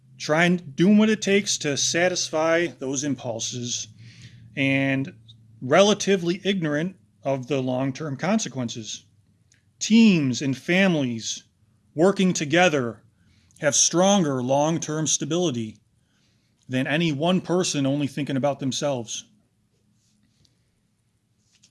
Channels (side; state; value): both; identical; correlation 1.00